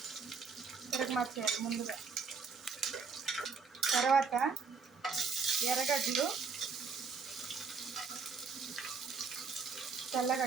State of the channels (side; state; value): left; quieter; 5.2 dB